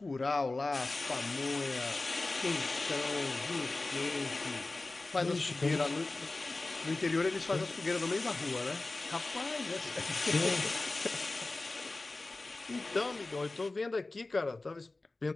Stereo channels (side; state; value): right; quieter; 3.2 dB